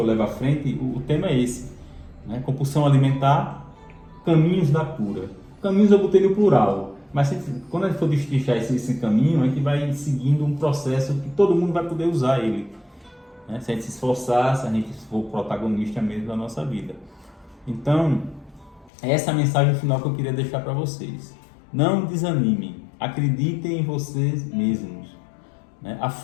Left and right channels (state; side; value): drops out; right; at 18.9 s